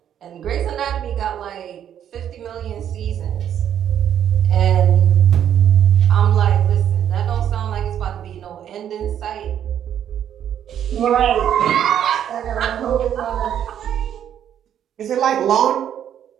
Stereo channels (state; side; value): quieter; left; 9.8 dB